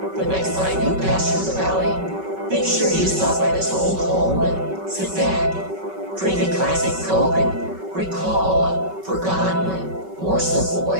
The next time you pass through the valley, make sure you stop by this old home and sit back, drink a classic Coke, and recall a forgotten and more simple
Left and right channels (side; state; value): left; late; 5.3 ms